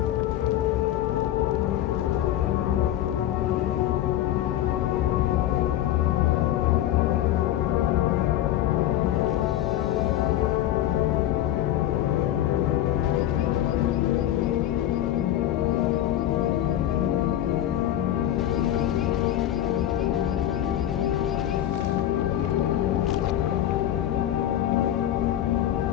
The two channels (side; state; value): right; quieter; 12.4 dB